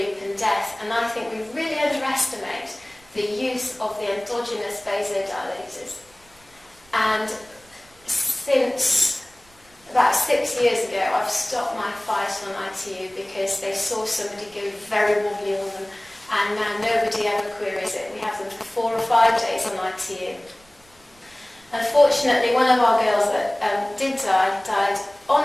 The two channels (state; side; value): noise; right; rumble, 30 dB below the sound